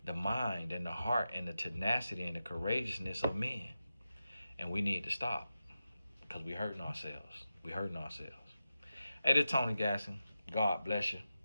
the mind and the heart and the tenacity and the courageousness of men. And we need to stop because we hurting ourselves. We hurting ourselves. Hey, this is Tony Gasson. God bless you.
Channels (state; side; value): inverted; both; correlation -0.91